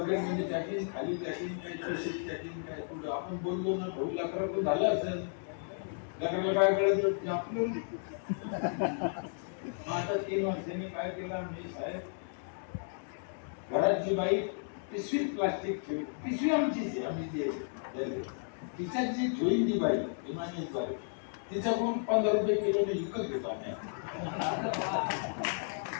मध्ये टाकीन, खाली टाकीन, काही तशीच टाकीन, काय पुढं आपण बोललो ना भाऊ लाकडा पण झाला असेल, लाकडाला काय कळत आपलं. आता 3 वर्षांनी काय केलं मी साहेब, घराची बाई पिशवीत प्लास्टिक ठेवी, पिशवी आमचीच आहे, आम्ही जे तिच्यात जी ठेवीन ती बाई इमानीत बाई तिच्याकडून 15 रुपये किलोने विकत घेतो आम्ही.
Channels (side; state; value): right; silent; digital silence